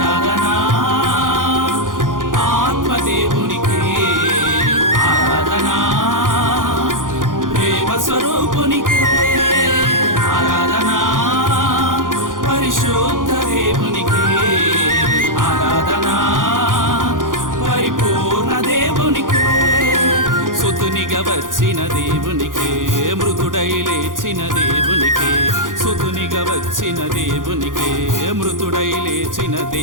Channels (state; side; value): late; left; 0.89 ms